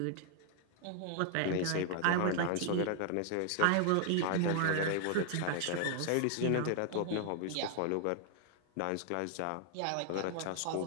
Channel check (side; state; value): both; different; correlation 0.00